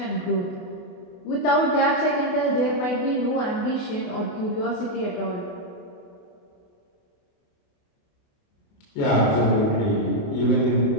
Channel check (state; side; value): late; right; 28 ms